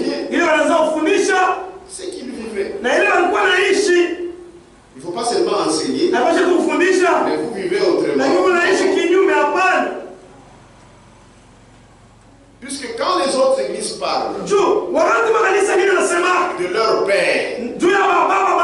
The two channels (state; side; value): identical; both; correlation 1.00